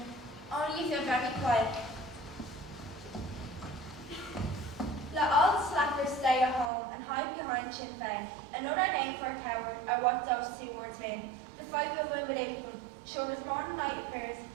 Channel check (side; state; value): left; drops out; at 6.7 s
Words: Only if you're very quiet. Let all the slackers stay at home and hide behind Sinn Féin. Another name for a coward are what those 2 words mean. The fight will win with April. Show as morning light appears,